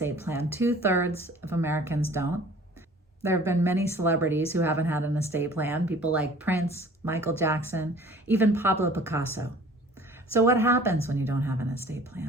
plan. 2/3 of Americans don't. There have been many celebrities who haven't had an estate plan, people like Prince, Michael Jackson, even Pablo Picasso. So what happens when you don't have an estate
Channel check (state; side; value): normal; both; correlation 0.49